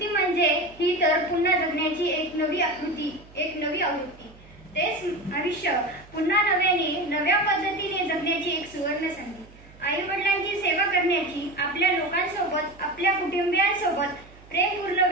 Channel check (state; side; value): noise; right; hum, 23 dB below the sound